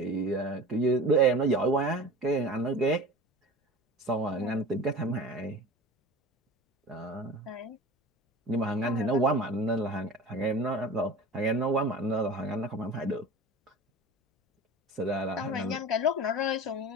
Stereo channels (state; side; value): normal; both; correlation 0.35